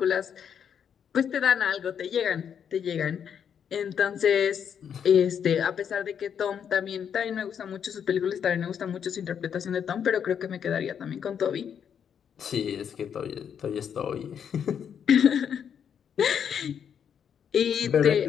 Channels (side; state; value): right; quieter; 8.0 dB